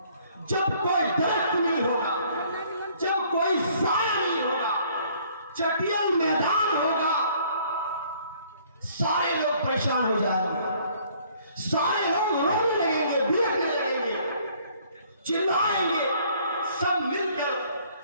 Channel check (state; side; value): inverted; both; correlation -0.60